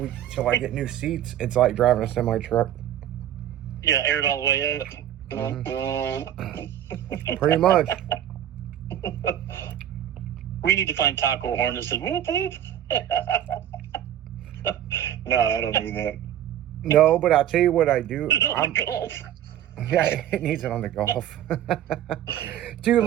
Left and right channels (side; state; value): left; quieter; 11.0 dB